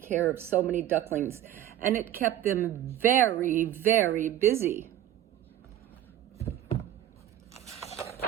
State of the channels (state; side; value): quieter; left; 12.1 dB